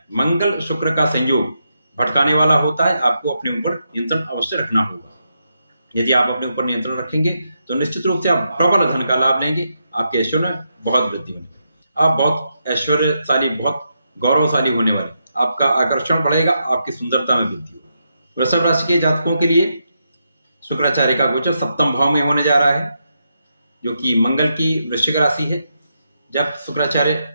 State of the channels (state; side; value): inverted; both; correlation -0.83